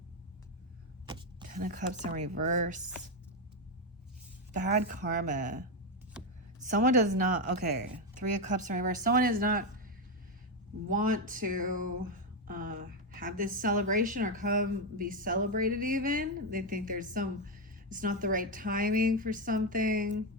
Ten of Cups in reverse. Bad karma. Someone does not, okay, Three of Cups in reverse. Someone does not want to have this celebration or come be celebrated even. They think it's not the right timing for something.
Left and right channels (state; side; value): normal; both; correlation 0.07